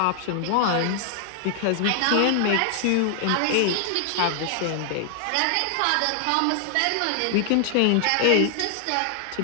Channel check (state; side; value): different; both; correlation 0.00